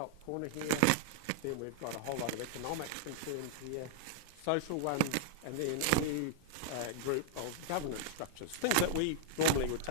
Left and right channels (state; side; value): different; both; correlation -0.01